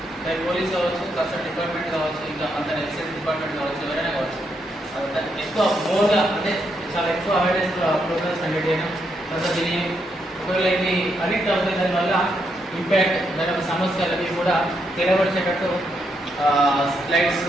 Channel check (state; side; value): normal; both; correlation 0.79